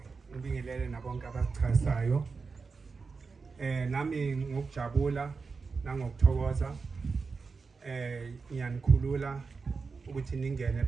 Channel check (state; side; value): quieter; left; 4.7 dB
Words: ngibingelele nabonke abachazayo nami ngokujabula nangokuthokoza ngiyanikhulula ukuthi ningene